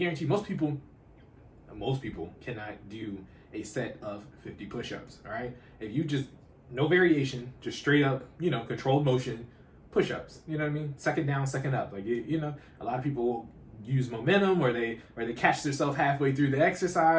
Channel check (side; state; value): both; identical; correlation 1.00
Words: most people cannot do a set of 50 push-ups, all right? If you just, no variation, just straight up, controlled motion, push-ups, you know what I mean? Second down, second up. Like, a lot of people use momentum or they catch themselves halfway through the